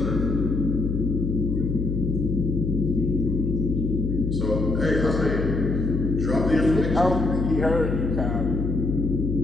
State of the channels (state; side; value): noise; left; hum, 1 dB below the sound